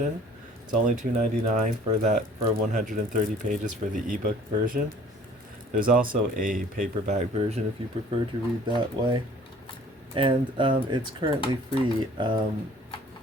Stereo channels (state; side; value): normal; both; correlation 0.52